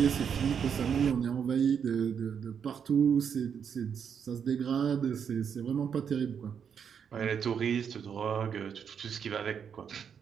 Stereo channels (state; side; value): quieter; left; 7.4 dB